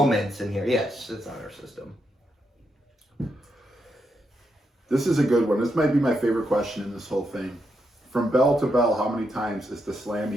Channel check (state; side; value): normal; both; correlation 0.82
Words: in here. Yes, it's honor system. This is a good one. This might be my favorite question in this whole thing. From bell to bell, how many times is the